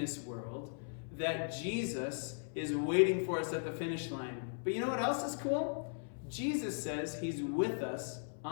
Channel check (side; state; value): right; silent; 53 dB below the other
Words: world that Jesus is waiting for us at the finish line. But you know what else is cool? Jesus says he's with us